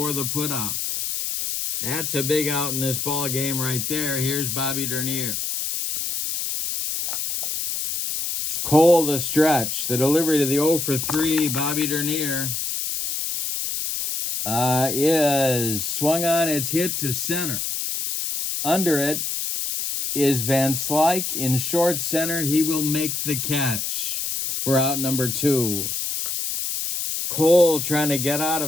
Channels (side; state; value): left; noise; hiss, 2 dB below the sound